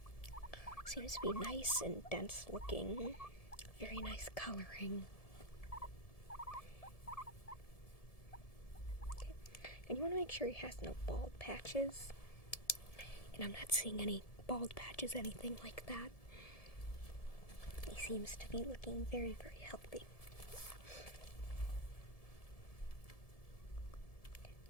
seems to be nice and dense looking. Very nice coloring. Okay. And you want to make sure he has no bald patches. And I'm not seeing any bald patches, anything like that. He seems to be looking very, very healthy.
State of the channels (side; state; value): right; late; 1.7 ms